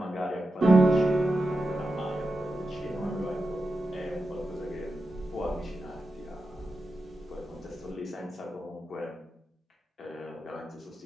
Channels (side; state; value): both; normal; correlation 0.90